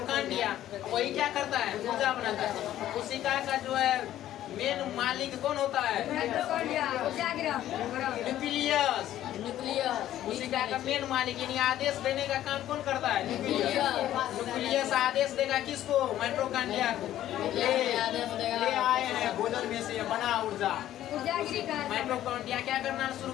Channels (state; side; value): quieter; right; 12.7 dB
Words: वही क्या करता है? ऊर्जा बनाता है। कोशिका का जो है मेन मालिक कौन होता है? न्यूक्लियस। कोशिका का मेन मालिक, यानी आदेश देने का काम कौन करता है? न्यूक्लियस आदेश देगा किसको? माइटोकॉन्ड्रिया को। ले आए हैं भोजन में से बना ऊर्जा। माइटोकॉन्ड्रिया क्या करना शुरू